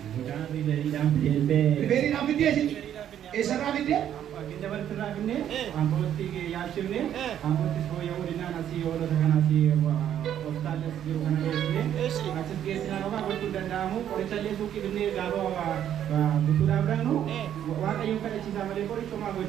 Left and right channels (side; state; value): left; quieter; 10.3 dB